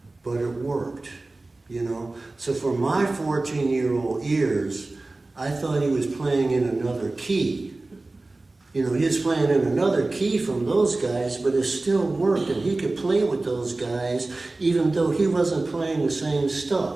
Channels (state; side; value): quieter; left; 3.1 dB